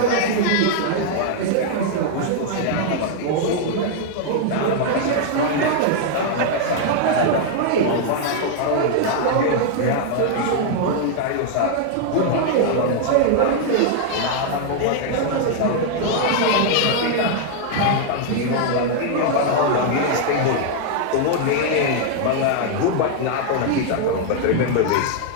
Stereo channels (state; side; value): different; both; correlation 0.00